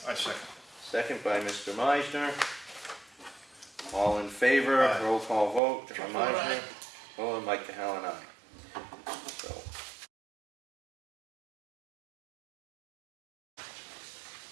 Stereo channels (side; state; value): left; drops out; at 5.6 s